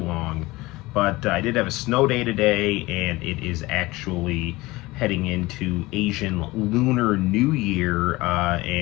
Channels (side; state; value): right; quieter; 20.5 dB